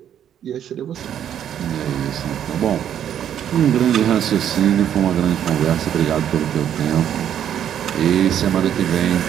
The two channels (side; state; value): left; quieter; 9.9 dB